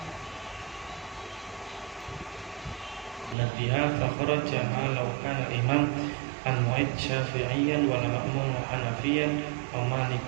nabiha fakharaja law kana al-imam al-mu'id syafi'iyyan wal ma'mum hanafiyan wa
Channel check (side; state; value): left; drops out; at 3.4 s